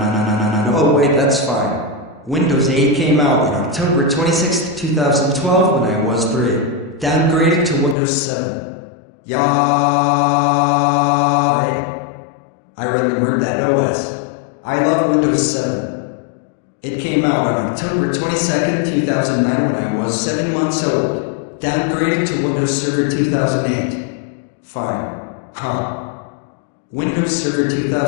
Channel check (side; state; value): right; drops out; at 8.0 s